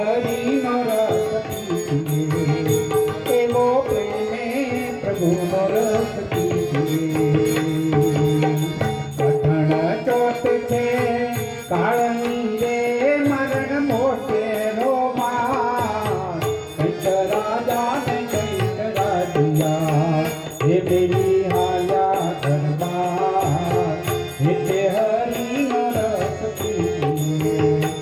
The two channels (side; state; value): both; identical; correlation 1.00